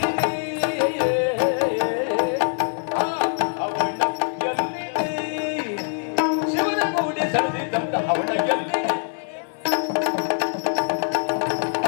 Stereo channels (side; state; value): right; silent; 63 dB below the other